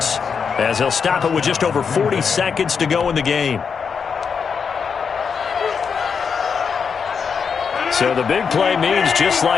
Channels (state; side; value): quieter; right; 6.2 dB